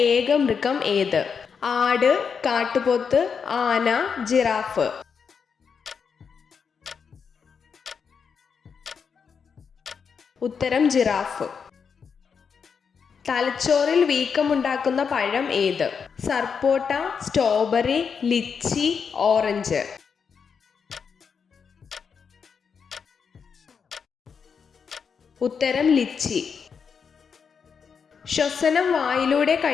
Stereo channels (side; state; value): right; quieter; 6.3 dB